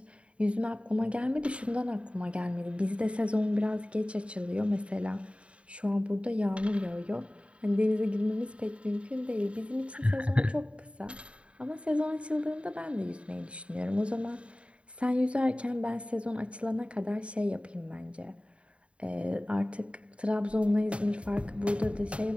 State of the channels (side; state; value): left; late; 0.061 ms